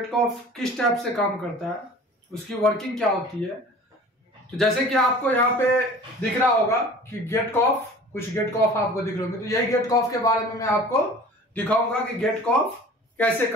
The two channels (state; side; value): normal; both; correlation 0.44